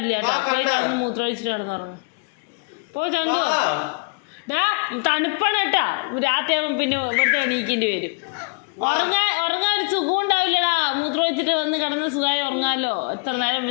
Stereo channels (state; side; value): quieter; right; 35.1 dB